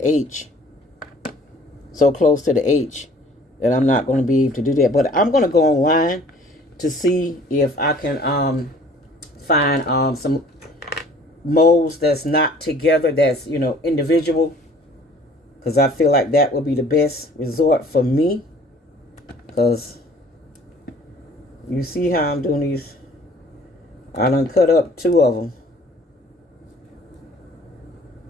H. So close to the H that I'm not going to be able to do that. But I'm going to go online to see if I can find some molds that's not together, that's, you know, individual. Because I feel like that will be the best resort for me. Because you see how I'm doing these. I done cut up 2 of them.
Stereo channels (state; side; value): normal; both; correlation 0.53